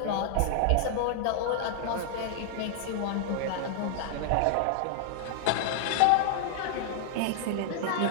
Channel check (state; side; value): different; both; correlation -0.01